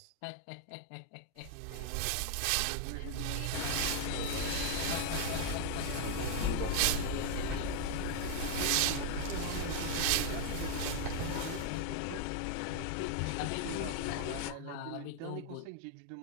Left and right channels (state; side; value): different; both; correlation 0.00